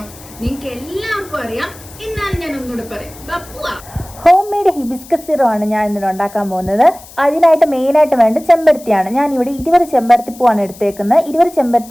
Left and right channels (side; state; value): left; noise; hiss, 20 dB below the sound